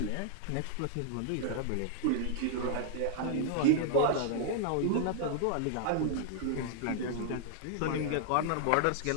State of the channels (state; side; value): different; both; correlation -0.01